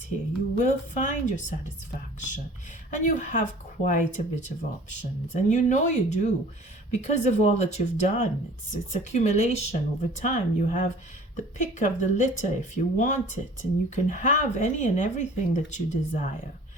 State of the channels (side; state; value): both; normal; correlation 0.47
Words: here. You will find your satisfaction, and you have quite a bit of options, and you know you do because of all that you've done. It's accumulation over time. You have the pick of the litter if you want it, and you can have any and everything that you desire.